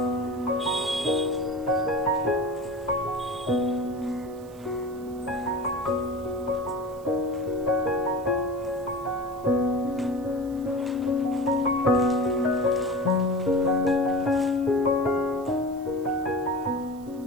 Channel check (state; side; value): noise; right; hiss, 26 dB below the sound